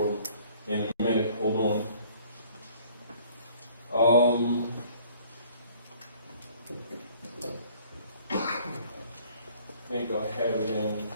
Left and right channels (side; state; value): both; inverted; correlation -0.56